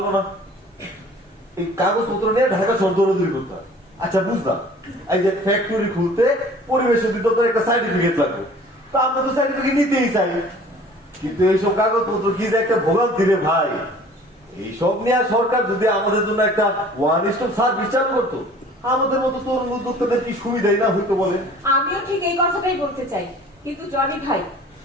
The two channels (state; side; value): normal; both; correlation 0.48